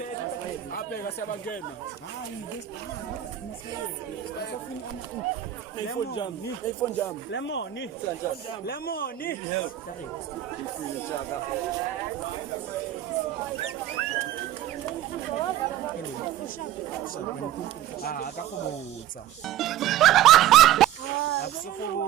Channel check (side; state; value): left; quieter; 12.2 dB